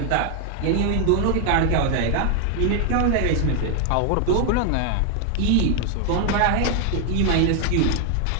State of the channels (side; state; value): both; different; correlation 0.00